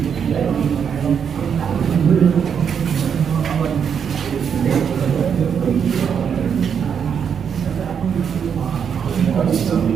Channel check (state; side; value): quieter; left; 7.4 dB